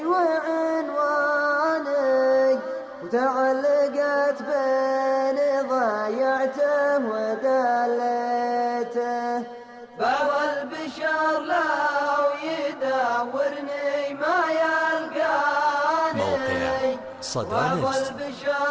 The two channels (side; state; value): both; identical; correlation 1.00